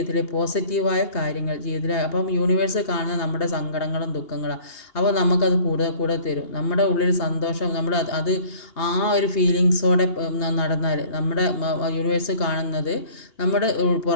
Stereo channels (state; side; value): late; right; 2.8 ms